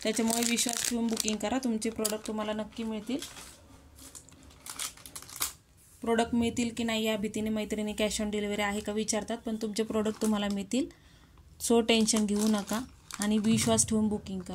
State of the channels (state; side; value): identical; both; correlation 1.00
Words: त्याच्यामुळे विश्वास ठेवून बुकिंग करा. तुमचे प्रोडक्ट तुम्हाला नक्की मिळतील. प्रोडक्ट मिळतील की नाही या भीतीने मैत्रिणी कॅश ऑन डिलिव्हरी आहे का विचारतात, पण तुमचे प्रोडक्ट तुम्हाला मिळतील. सो टेन्शन घेऊ नका आणि विश्वास ठेवून बुकिंग